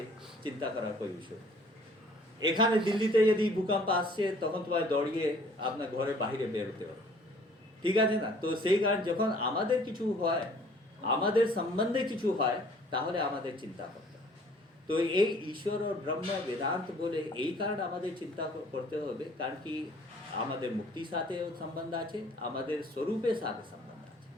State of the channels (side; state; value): both; normal; correlation 0.55